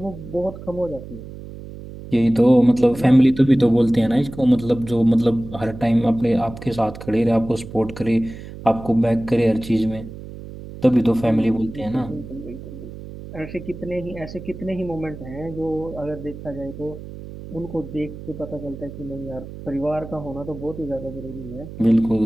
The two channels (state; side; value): noise; right; hum, 13 dB below the sound